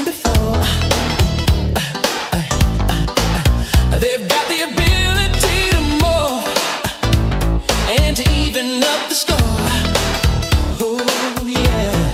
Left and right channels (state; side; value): identical; both; correlation 1.00